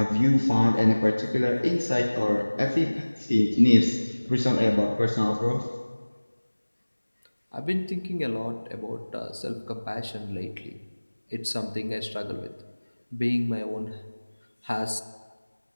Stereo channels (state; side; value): inverted; both; correlation -1.00